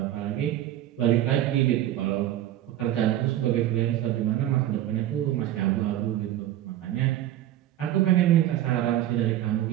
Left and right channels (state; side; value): quieter; left; 12.8 dB